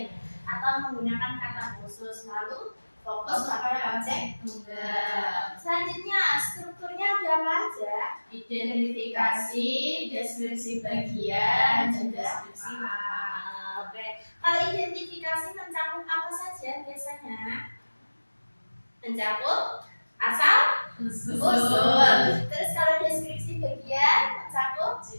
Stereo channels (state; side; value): inverted; both; correlation -1.00